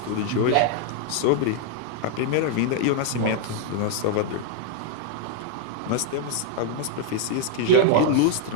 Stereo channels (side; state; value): both; different; correlation 0.00